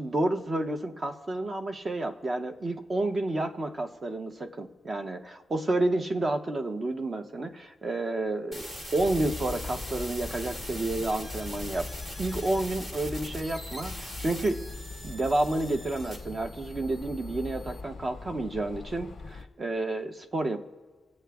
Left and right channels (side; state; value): both; normal; correlation 0.90